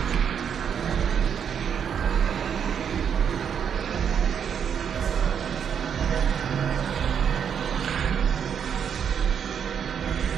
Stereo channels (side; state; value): left; quieter; 7.8 dB